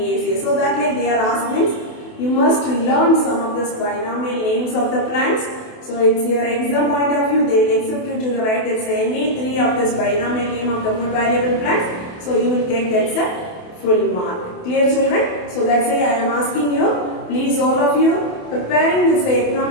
So that like they are asking, you must learn some of this binomial names of the plants. So it's your exam point of view, they will accept you to write that's any 3 of this binomial name of the food valuable plants. So you will get that's a full mark. Clear, children? So that's why I am asking you, please all of you preparing this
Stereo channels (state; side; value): late; right; 28 ms